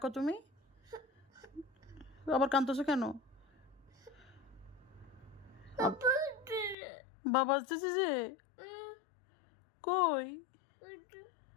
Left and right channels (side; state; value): right; drops out; at 6.8 s